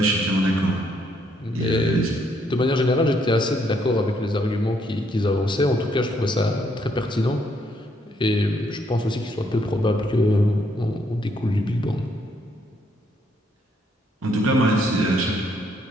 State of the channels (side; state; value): both; normal; correlation 0.71